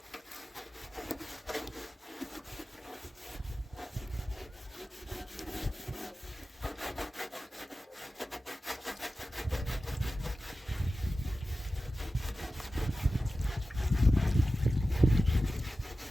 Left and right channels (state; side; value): normal; both; correlation 0.94